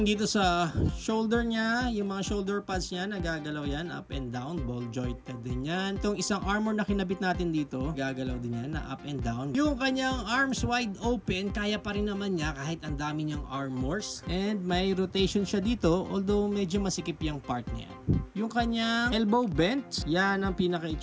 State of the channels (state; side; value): identical; both; correlation 1.00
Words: dito sa shoulder niya, yung mga shoulder pads niya, nagagalaw yan, up and down, ball jointed din yan. Itong isang armor na kinabit natin dito, gagalaw din yan, na up and down. Yung kanyang arms wide open, kaya pa rin naman niya kahit ang dami niyang armors. And may rotation siya dito, although medyo masikip yung part niya. Yung kanyang elbow bent, yan ang